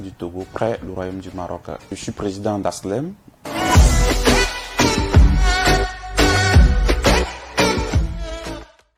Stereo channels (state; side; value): identical; both; correlation 1.00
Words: du Togo près le Royaume du Maroc. Je suis président d'Aslem.